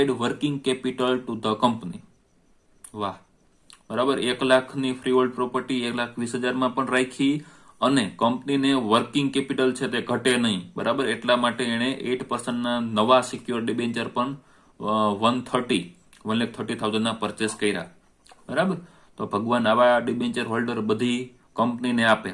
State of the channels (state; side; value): identical; both; correlation 1.00